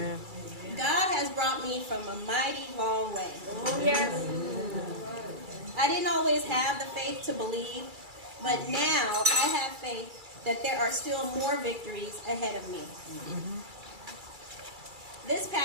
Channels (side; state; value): left; late; 2.3 ms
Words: God has brought me from a mighty long way. Oh, yes. I didn't always have the faith to believe, but now I have faith that there are still more victories ahead of me. Mm-hmm. This